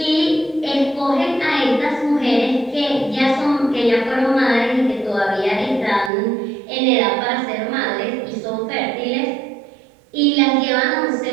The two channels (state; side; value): drops out; left; at 6.1 s